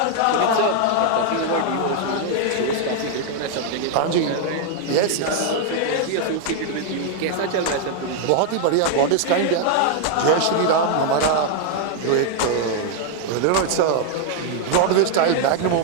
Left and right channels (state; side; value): different; both; correlation 0.00